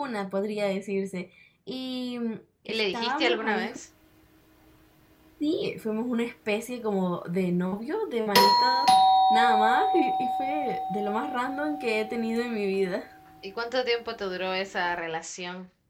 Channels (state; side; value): identical; both; correlation 1.00